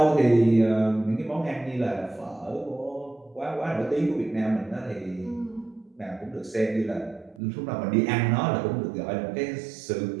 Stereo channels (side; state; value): left; drops out; at 7.4 s